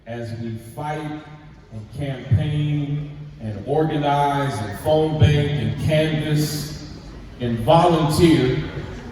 as we fight and campaign and organize and phone bank and canvass and volunteer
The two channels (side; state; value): both; identical; correlation 1.00